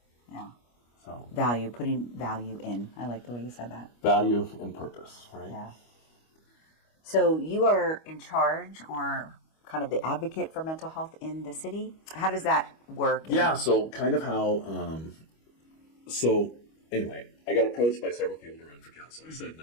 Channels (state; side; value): late; right; 25 ms